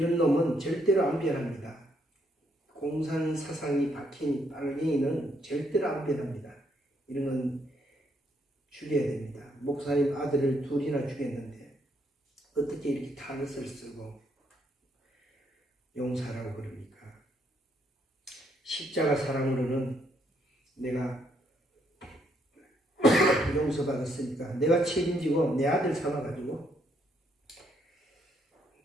놈은 절대로 안 변합니다. 공산 사상이 박힌 빨갱이는 절대로 안 변합니다. 이런 건 죽여야 됩니다. 목사님 아들을 둘이나 죽였는데 어떻게 이렇게 탈을 쓰고 용서하라고 그럽니까? 십자가 사랑으로는 내가 용서받았으니까 내가 책임지고 내 아들 삼아가지고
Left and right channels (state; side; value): normal; both; correlation 0.72